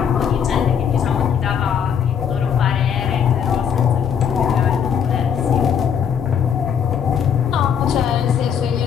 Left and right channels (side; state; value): right; quieter; 7.8 dB